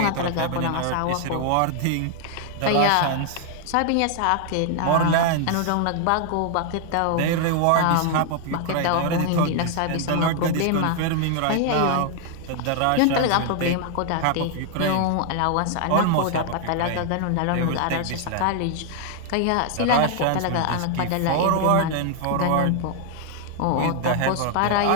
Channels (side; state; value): both; different; correlation 0.00